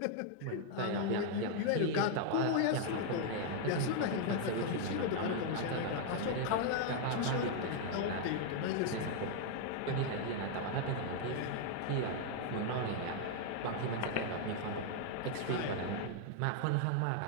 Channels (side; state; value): both; different; correlation 0.00